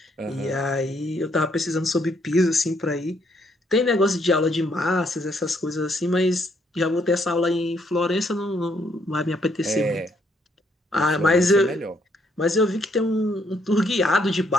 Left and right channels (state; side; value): normal; both; correlation 0.71